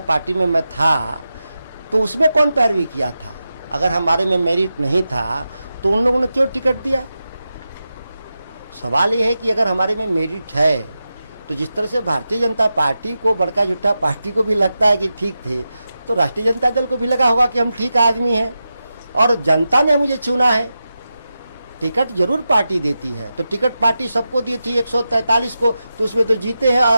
पार्टी में मैं था, तो उसमें कौन पैरवी किया था? अगर हमारे में मेरिट नहीं था तो उन लोगों ने क्यों टिकट दिया? सवाल ये है कि अगर हमारे में मेरिट है तो जिस तरह से भारतीय जनता पार्टी को, बड़का झूठा पार्टी को भी लगता है कि ठीक थे, तो राष्ट्रीय जनता दल को भी लगा होगा कि हम ठीक आदमी हैं और जनता ने मुझे चुना है। टिकट जरूर पार्टी देती है, तो टिकट पार्टी सबको दी थी 143 को, तो उसमें तो जीते हैं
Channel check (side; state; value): both; inverted; correlation -0.91